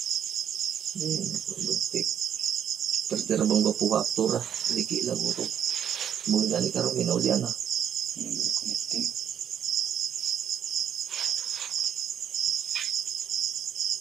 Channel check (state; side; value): quieter; left; 9.1 dB